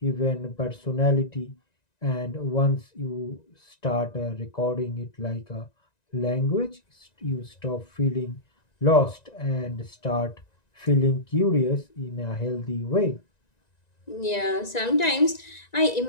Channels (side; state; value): right; late; 1.9 ms